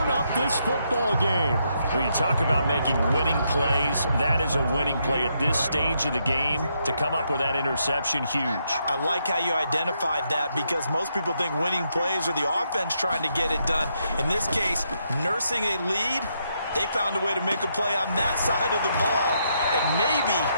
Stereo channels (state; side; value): inverted; both; correlation -0.78